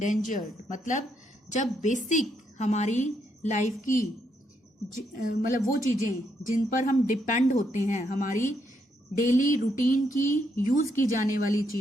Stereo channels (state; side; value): normal; both; correlation 0.77